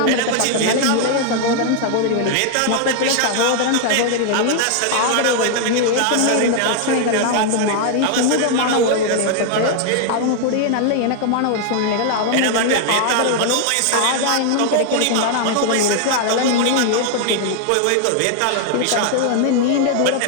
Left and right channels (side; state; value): both; different; correlation 0.00